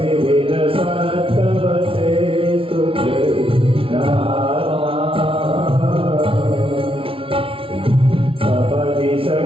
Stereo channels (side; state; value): left; late; 0.26 ms